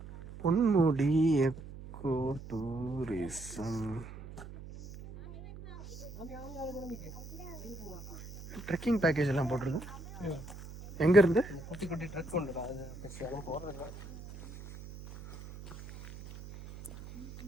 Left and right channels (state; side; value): noise; right; hum, 14 dB below the sound